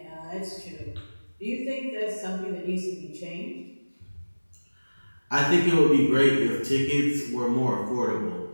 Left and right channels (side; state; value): both; inverted; correlation -1.00